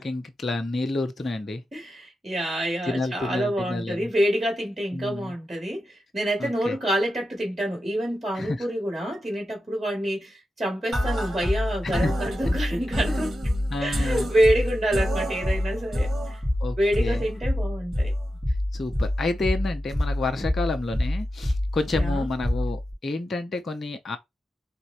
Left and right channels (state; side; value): normal; both; correlation 0.90